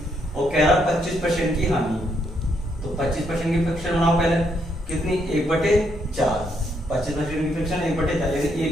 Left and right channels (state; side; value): normal; both; correlation 0.75